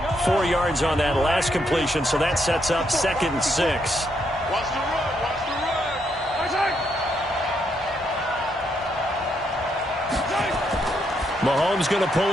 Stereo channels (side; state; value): both; normal; correlation 0.77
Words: 4 yards on that last completion, so that sets up 2nd and 6. Mahomes going to